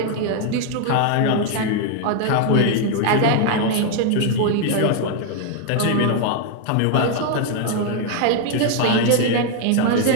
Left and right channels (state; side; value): different; both; correlation 0.00